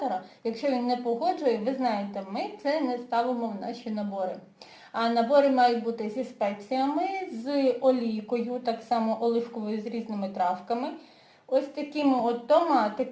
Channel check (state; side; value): identical; both; correlation 1.00